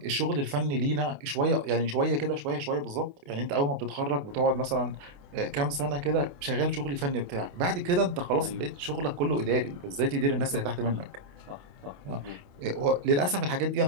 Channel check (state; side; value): late; left; 28 ms